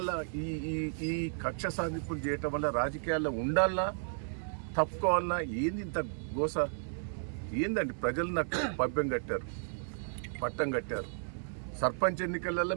ఈ కక్ష సాధింపులు చేయటం వల్ల రాజకీయాల్లో ఉండాలన్నా తప్పుకోవాలన్నా ఏంది ఇంత గోస ఏందండి? ప్రజలు నాకు పట్టం కట్టారు. సర్పంచ్ ఎన్నికలలో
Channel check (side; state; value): left; silent; 55 dB below the other